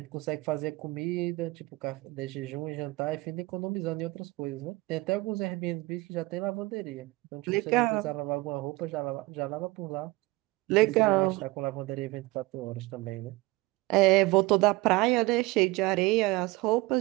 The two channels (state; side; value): quieter; left; 21.5 dB